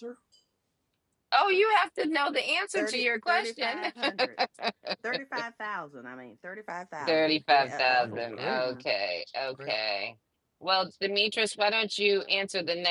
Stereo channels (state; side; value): identical; both; correlation 1.00